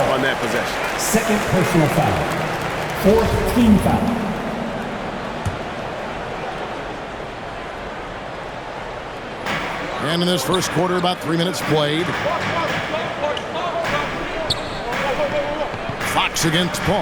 on that possession. Second personal foul. 4th team foul. And in this first quarter, about 3 minutes played. Fox against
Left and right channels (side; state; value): both; identical; correlation 1.00